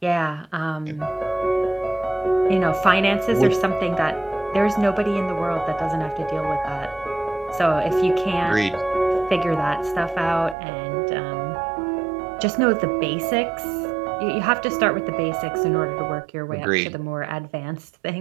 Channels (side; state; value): left; drops out; at 10.6 s